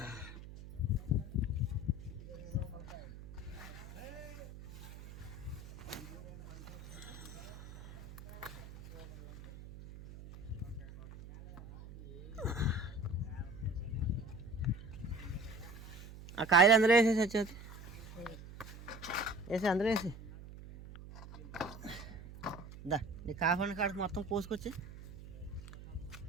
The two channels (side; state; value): right; noise; hum, 14 dB below the sound